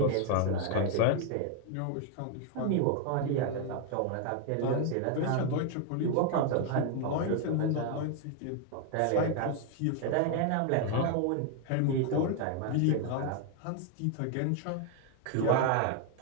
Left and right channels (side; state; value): both; different; correlation 0.01